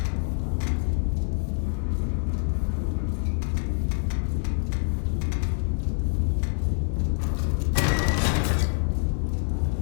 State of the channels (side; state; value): right; silent; digital silence